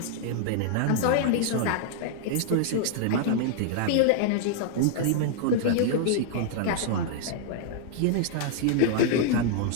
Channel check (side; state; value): both; different; correlation 0.00